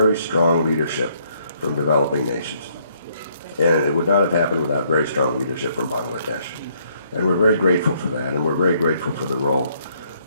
strong leadership from developing nations. And it would not have happened without very strong leadership from Bangladesh. And we're very grateful for that, and we're very grateful for the role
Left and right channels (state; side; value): inverted; both; correlation -0.69